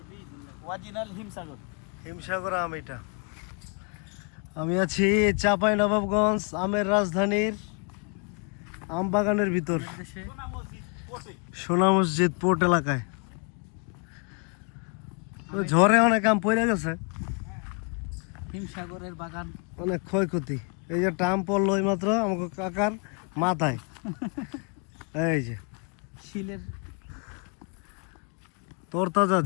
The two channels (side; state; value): right; quieter; 35.7 dB